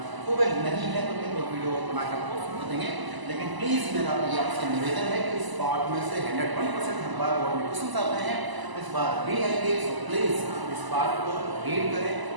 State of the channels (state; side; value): late; left; 1.0 ms